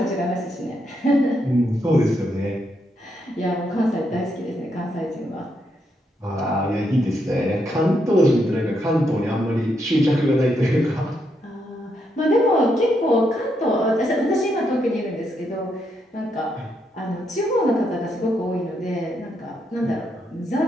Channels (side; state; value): both; normal; correlation 0.79